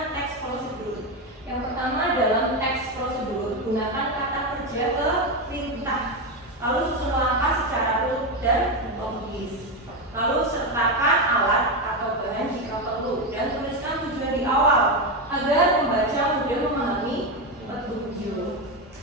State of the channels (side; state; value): both; normal; correlation 0.11